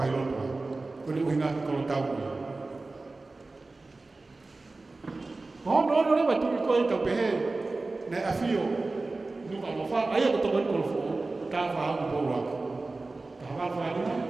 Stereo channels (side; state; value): left; quieter; 3.4 dB